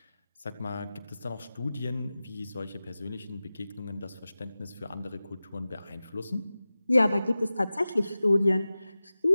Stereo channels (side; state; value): both; inverted; correlation -0.96